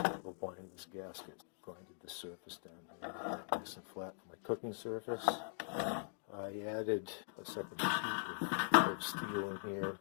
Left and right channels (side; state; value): right; silent; digital silence